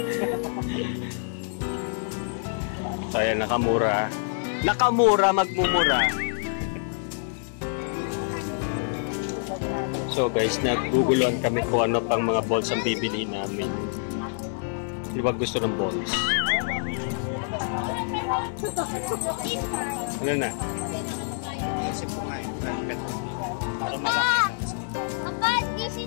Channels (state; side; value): silent; right; digital silence